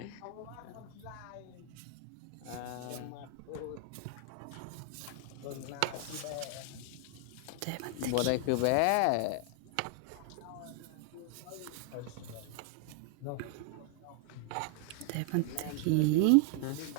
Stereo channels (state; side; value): different; both; correlation 0.00